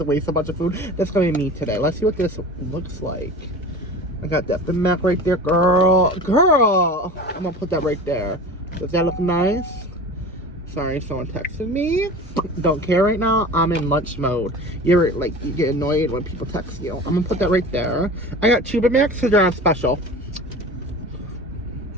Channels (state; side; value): normal; both; correlation 0.36